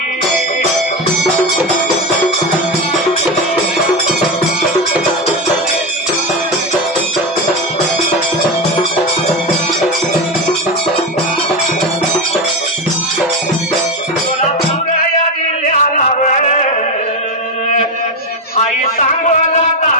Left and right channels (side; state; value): both; normal; correlation 0.15